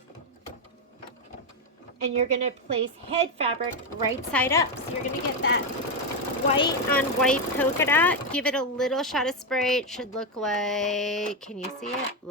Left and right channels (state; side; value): normal; both; correlation 0.07